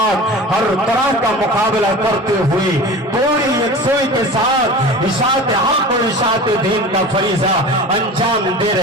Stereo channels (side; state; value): both; normal; correlation 0.36